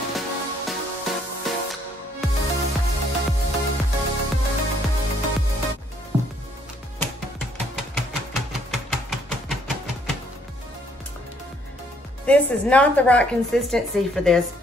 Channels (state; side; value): normal; both; correlation 0.67